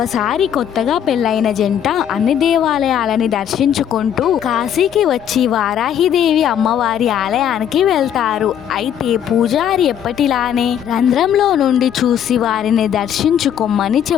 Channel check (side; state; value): right; quieter; 9.5 dB